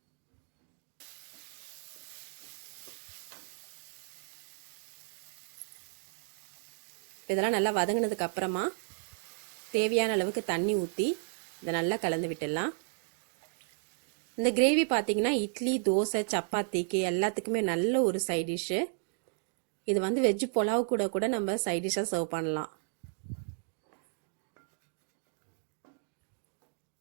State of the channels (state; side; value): silent; left; 56 dB below the other